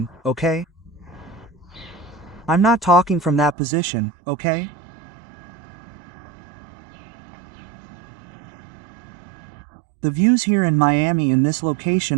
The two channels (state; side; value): drops out; left; at 3.6 s